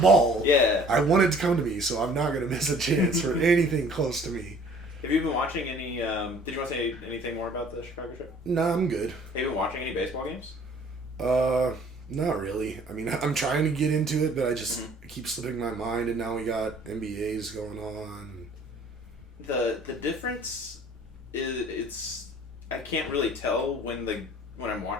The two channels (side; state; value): both; normal; correlation 0.53